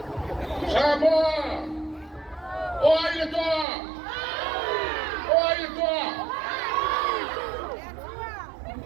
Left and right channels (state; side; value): drops out; left; at 3.7 s